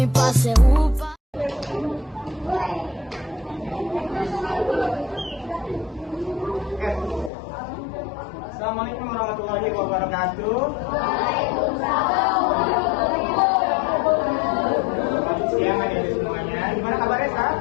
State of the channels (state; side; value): drops out; right; at 7.3 s